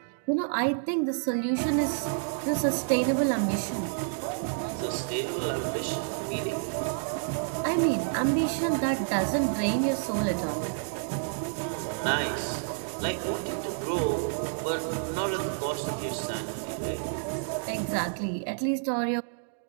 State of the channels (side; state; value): left; silent; digital silence